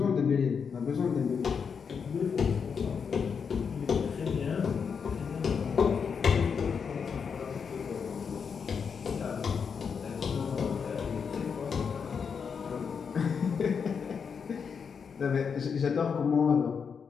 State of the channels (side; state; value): right; quieter; 6.3 dB